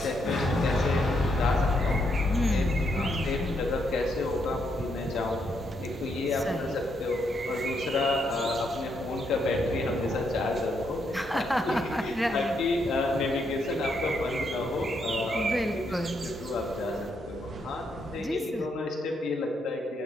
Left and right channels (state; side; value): normal; both; correlation 0.77